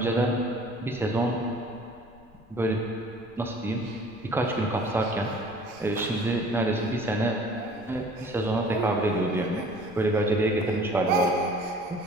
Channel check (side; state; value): left; noise; rumble, 25 dB below the sound